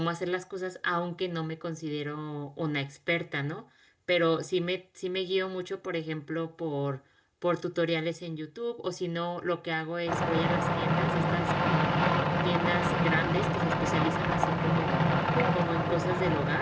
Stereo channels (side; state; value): both; identical; correlation 1.00